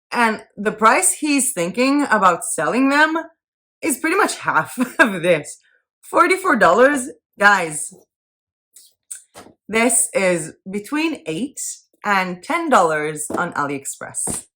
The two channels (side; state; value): both; identical; correlation 1.00